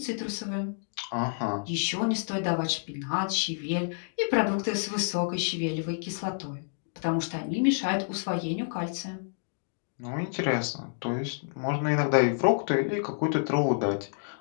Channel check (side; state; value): right; silent; digital silence